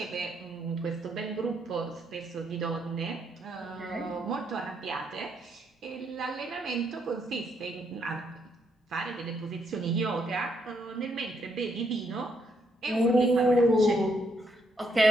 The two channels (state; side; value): normal; both; correlation 0.75